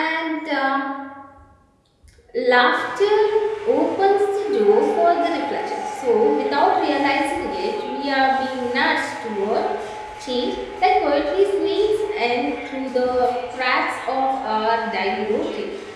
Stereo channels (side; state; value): both; identical; correlation 1.00